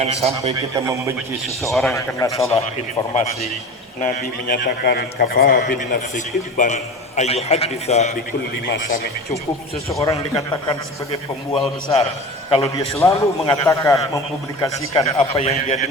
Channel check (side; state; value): both; normal; correlation 0.32